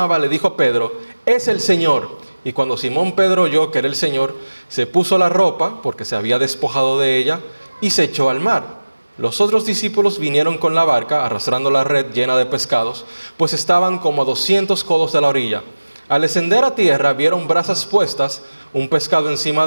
le dijo a Pedro: es el Señor. Y cuando Simón Pedro oyó que era el Señor, se puso la ropa, porque se había despojado de ella, y se echó al mar. Los otros discípulos vinieron con la barca, arrastrando la red llena de pescados, pues estaban como a 200 codos de la orilla. Al descender a tierra, vieron brasas puestas, un pescado encima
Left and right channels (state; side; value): inverted; both; correlation -1.00